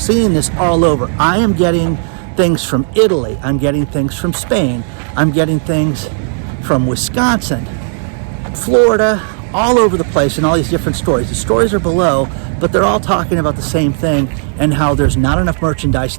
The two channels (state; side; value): silent; left; digital silence